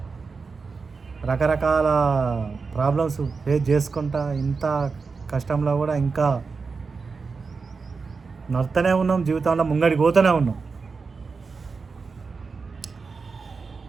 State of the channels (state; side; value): quieter; left; 4.7 dB